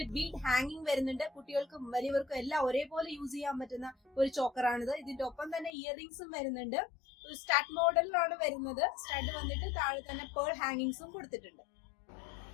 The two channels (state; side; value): drops out; right; at 5.7 s